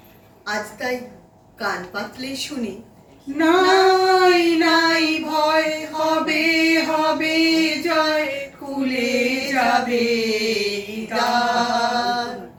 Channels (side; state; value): both; identical; correlation 1.00